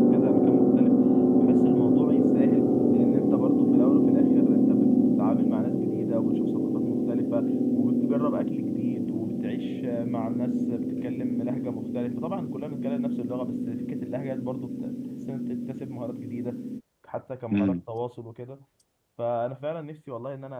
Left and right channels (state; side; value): identical; both; correlation 1.00